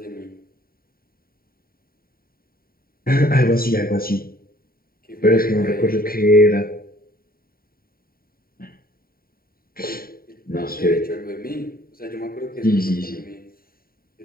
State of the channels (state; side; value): late; right; 0.43 ms